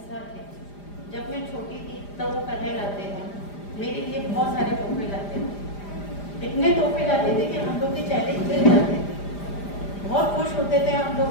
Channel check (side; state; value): right; late; 5.0 ms